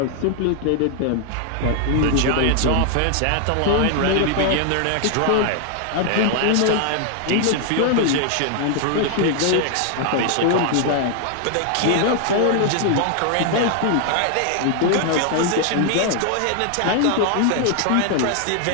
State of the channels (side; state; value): both; different; correlation 0.00